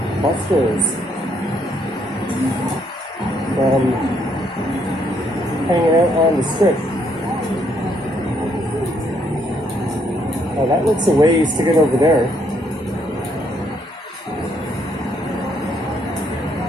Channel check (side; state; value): both; normal; correlation 0.71